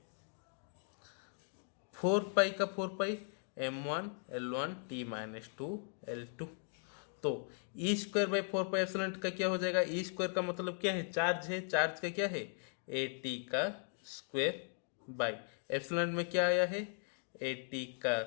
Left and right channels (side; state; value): right; silent; 52 dB below the other